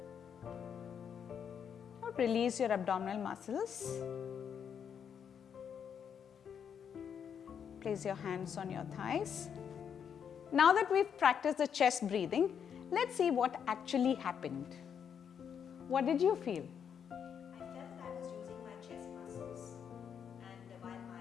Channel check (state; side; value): quieter; right; 7.7 dB